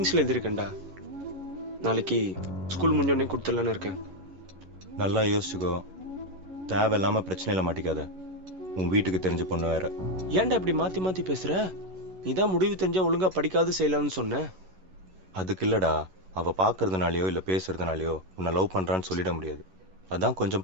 எழுதியிருக்கேன்டா. நாளைக்கு ஸ்கூல் முடிஞ்சோடனே கொடுத்துடலான்னு இருக்கேன். நல்லா யோசிச்சுக்கோ, தேவையில்லாமல் பிரச்சனையில் மாட்டிக்காத. உன் வீட்டுக்கு தெரிஞ்ச பொண்ணு வேற. ஏன்டா இப்படி மாற்றி மாற்றி பேசுகிற? நீ தான் முடிவு தெரிஞ்சால் ஒழுங்காக படிக்காது செய்யலாம்னு சொன்ன. அதுக்கு இல்லைடா, அவள் பார்க்கறதுனாலையோ இல்லை பேசுறதுனாலையோ உன்னை லவ் பண்ணுறான்னு சொல்லிட முடியாது. அதான்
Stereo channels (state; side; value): late; left; 11 ms